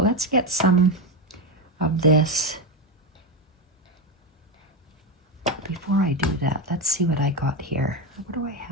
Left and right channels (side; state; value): both; normal; correlation 0.12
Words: let's get some of this. Before I do that, let's see what I got here. What do I